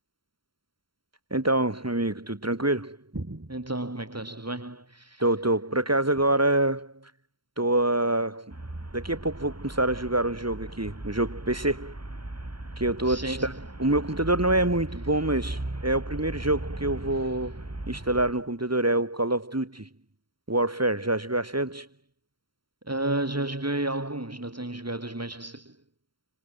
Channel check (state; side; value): late; left; 0.73 ms